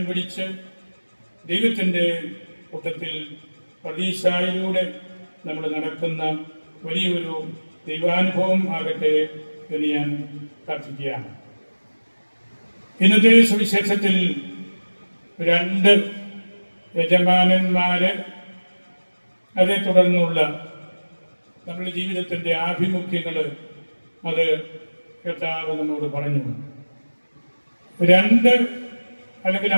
പിടിച്ച് ദൈവത്തിൻ്റെ കൂട്ടത്തിൽ പ്രതീക്ഷയിലൂടെ നമ്മൾ നടക്കുന്ന വലിയൊരു ദൈവാനുഭവം ആകട്ടെ എന്ന് ഞാൻ പ്രാർത്ഥിക്കുകയാണ്. ഇന്നത്തെ സുവിശേഷത്തിൽ 2 യജമാനന്മാര്, അതേ തുടർന്നുള്ള നമ്മുടെ ജീവിതത്തിൻ്റെ ആഭിമുഖ്യങ്ങൾ അത് കർത്താവ് നമ്മോട് പറഞ്ഞു. 2 അല്ലെങ്കിൽ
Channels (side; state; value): both; inverted; correlation -1.00